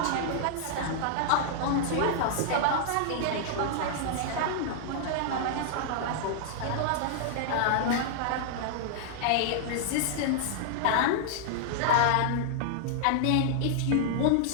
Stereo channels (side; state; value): both; different; correlation -0.01